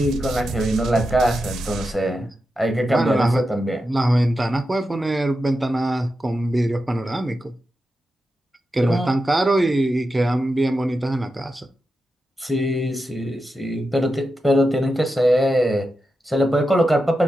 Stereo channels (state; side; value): normal; both; correlation 0.89